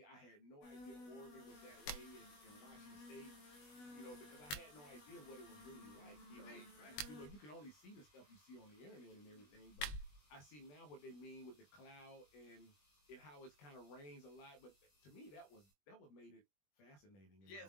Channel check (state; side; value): late; right; 20 ms